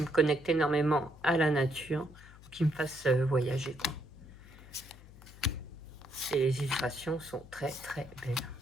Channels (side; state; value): left; noise; hum, 20 dB below the sound